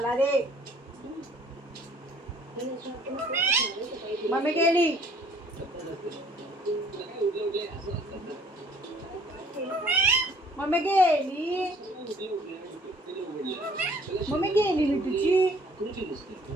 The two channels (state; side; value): normal; both; correlation 0.57